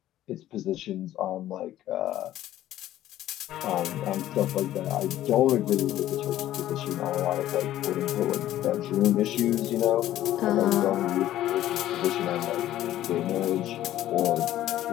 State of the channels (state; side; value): quieter; right; 13.4 dB